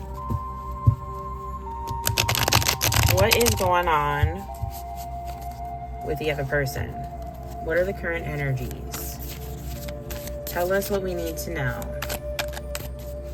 What is going on with the other person? What are the current energies? Tell us what we need to know.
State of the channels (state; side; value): identical; both; correlation 1.00